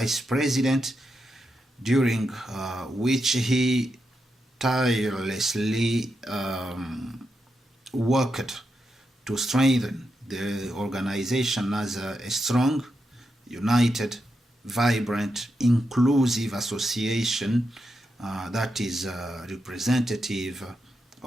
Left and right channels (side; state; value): both; normal; correlation 0.85